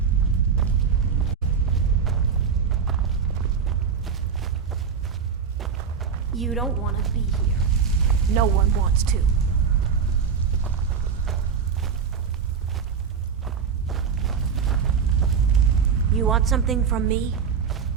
You don't want to be here. No one wants to. You want something from me?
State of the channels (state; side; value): quieter; left; 6.5 dB